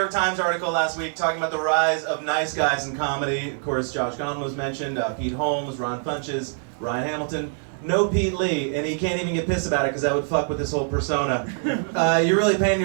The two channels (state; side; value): silent; left; 60 dB below the other